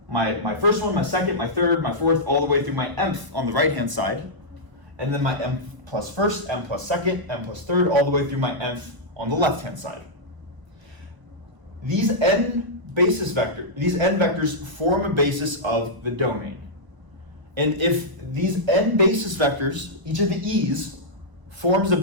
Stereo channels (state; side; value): late; left; 1.0 ms